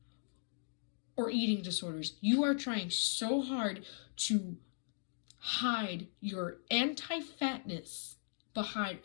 or eating disorders. You are trying so hard to hide your anti-fatness behind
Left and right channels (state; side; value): silent; right; digital silence